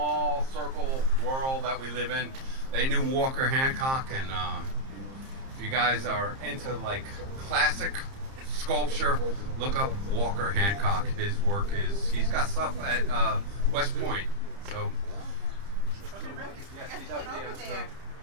circle world that we live in. They knew Walker Hancock, and if you guys are into like classic sculpture, look up Walker Hancock. His work he's got stuff at West Point. So yes, he does.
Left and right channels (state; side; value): late; left; 30 ms